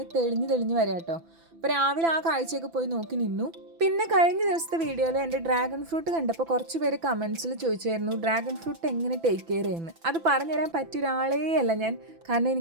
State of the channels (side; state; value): left; late; 6.0 ms